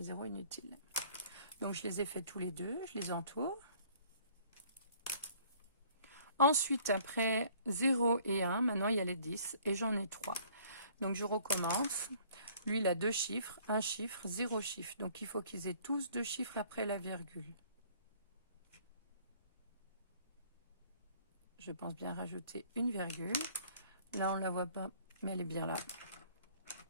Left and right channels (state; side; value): inverted; both; correlation -0.57